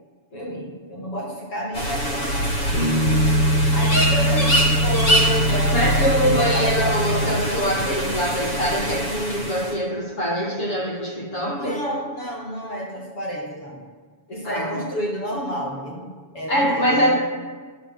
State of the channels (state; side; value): late; right; 7.1 ms